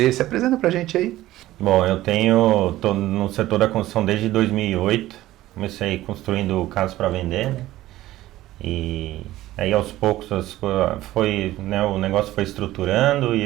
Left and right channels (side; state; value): left; quieter; 15.6 dB